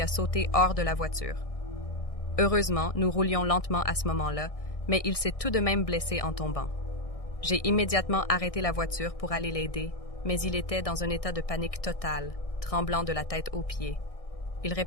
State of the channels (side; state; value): right; late; 1.6 ms